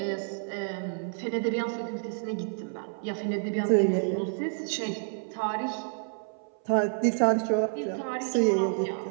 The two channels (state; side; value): silent; left; 58 dB below the other